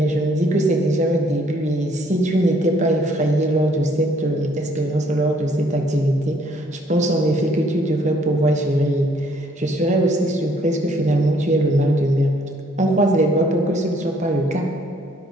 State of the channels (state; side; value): normal; both; correlation 0.64